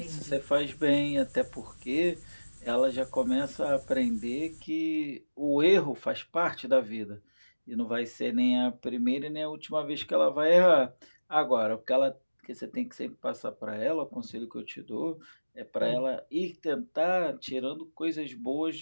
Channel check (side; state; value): both; inverted; correlation -1.00